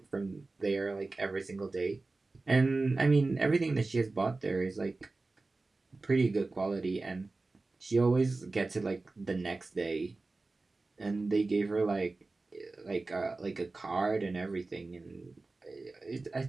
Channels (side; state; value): left; quieter; 3.4 dB